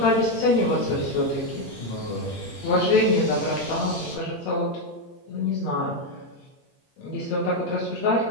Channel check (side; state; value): right; late; 8.6 ms